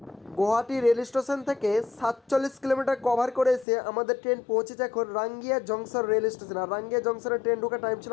Guwahati rail station থেকে 47 কিলোমিটার কভার করে এসে আমাদের ট্রেন পৌঁছেছে এখন রাঙ্গিয়া জংশন রেল স্টেশন। আর রাঙ্গিয়া জংশনের ট্রেন ঢোকার টাইম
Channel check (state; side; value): drops out; right; at 3.7 s